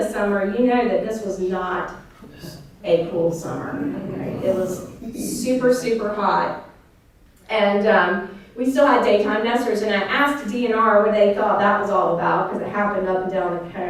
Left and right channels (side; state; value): both; identical; correlation 1.00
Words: summer, you know that this was not a cool summer. Right? It was super, super hot. And we still had daytime nesters, and I asked DNR what they thought that was all about, because it happened up and down the